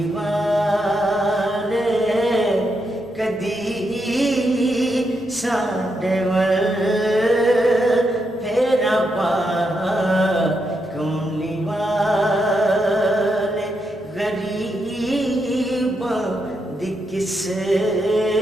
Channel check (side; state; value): both; normal; correlation 0.82